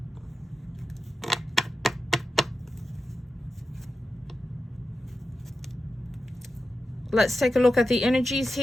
Let's take a look at the energies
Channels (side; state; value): both; normal; correlation 0.91